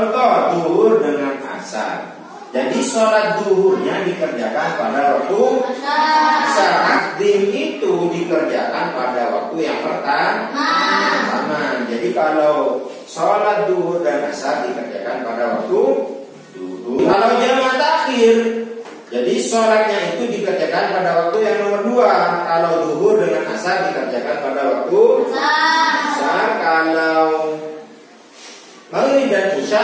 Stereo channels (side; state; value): both; identical; correlation 1.00